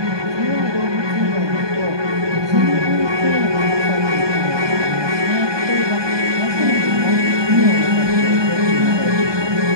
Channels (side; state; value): left; late; 1.2 ms